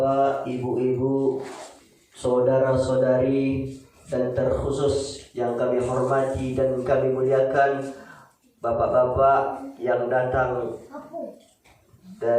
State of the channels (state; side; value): identical; both; correlation 1.00